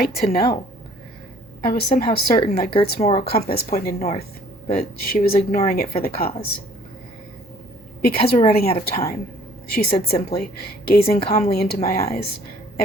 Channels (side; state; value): both; normal; correlation 0.57